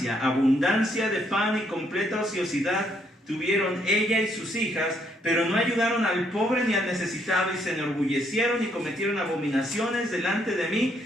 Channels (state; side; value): normal; both; correlation 0.72